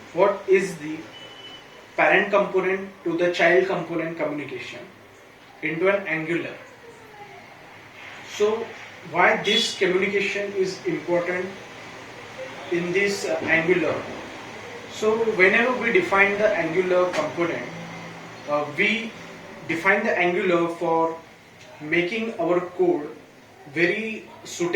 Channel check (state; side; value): identical; both; correlation 1.00